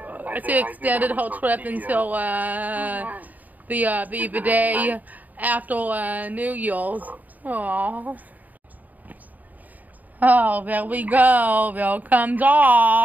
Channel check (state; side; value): late; left; 0.080 ms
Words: she extended her trip until the day after New Year's. Aww. Oh, there we go. There comes